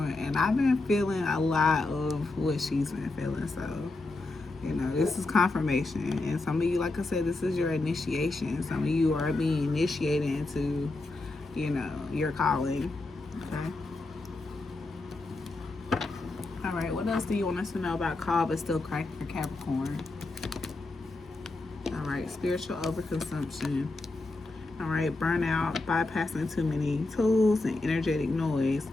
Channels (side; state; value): right; quieter; 3.1 dB